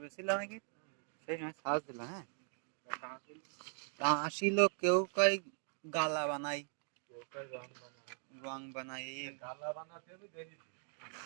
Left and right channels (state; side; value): silent; left; 51 dB below the other